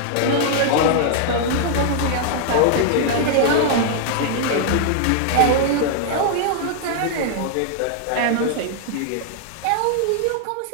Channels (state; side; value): different; both; correlation -0.01